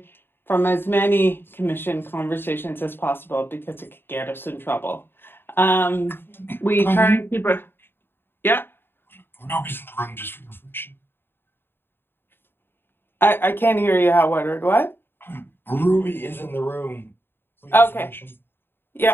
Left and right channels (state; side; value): late; right; 0.10 ms